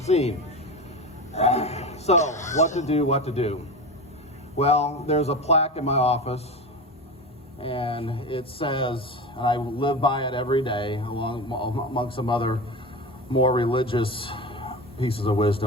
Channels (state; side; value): normal; both; correlation 0.25